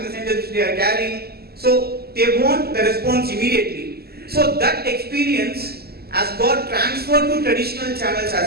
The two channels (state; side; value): late; left; 0.46 ms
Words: messengers which they are carrying. So they want the response immediately. So that experience has got transferred to traditional channels